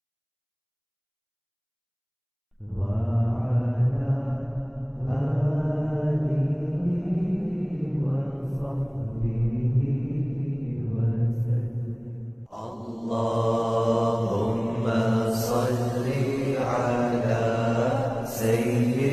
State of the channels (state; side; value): identical; both; correlation 1.00